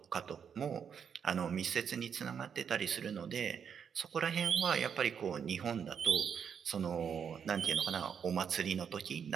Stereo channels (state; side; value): quieter; left; 7.4 dB